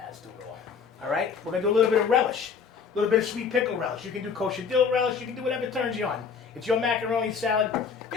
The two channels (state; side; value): quieter; right; 6.1 dB